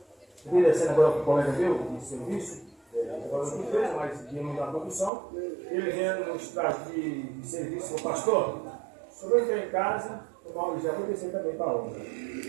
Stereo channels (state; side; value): drops out; left; at 5.1 s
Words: eu descendo agora para o colega meu, de serviço, agora não fez, mas de não da produção, ele vendo no estágio de serviço, o pastor, só vou entrar em casa, já vou descer também para a obra.